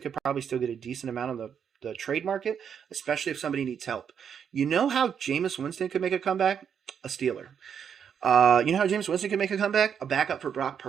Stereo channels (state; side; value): quieter; left; 7.7 dB